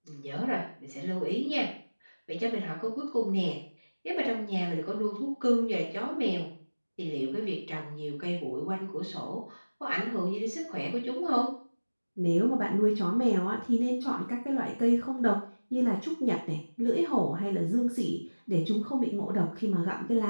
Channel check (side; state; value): both; inverted; correlation -1.00